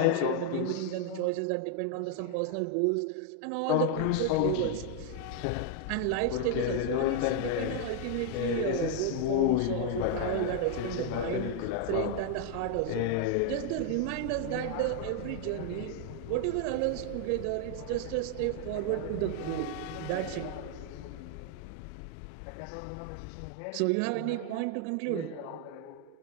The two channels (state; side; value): different; both; correlation 0.00